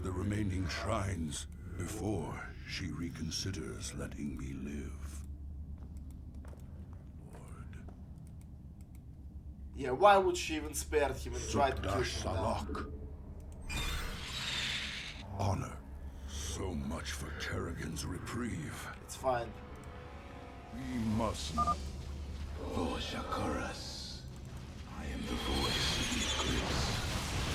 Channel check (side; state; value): both; identical; correlation 1.00